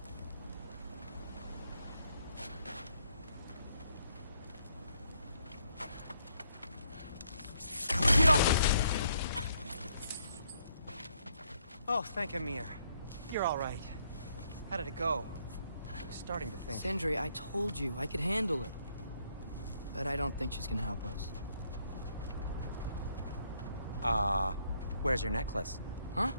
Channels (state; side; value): inverted; both; correlation -0.71